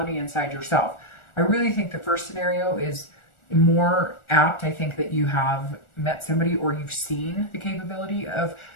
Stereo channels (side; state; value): right; late; 1.4 ms